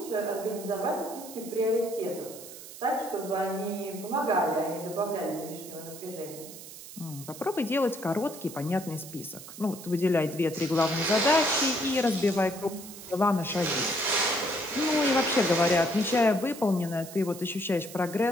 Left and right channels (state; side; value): noise; right; hiss, 14 dB below the sound